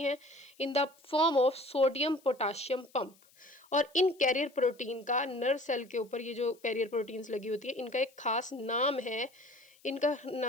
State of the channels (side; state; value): left; noise; hiss, 29 dB below the sound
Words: हैं in the form of sodium potassium pump. और इन कैरियर प्रोटीन का नर्व सेल के ऊपर, ये जो कैरियर प्रोटीन्स लगी होती है, इनका एक खास नाम है। इनका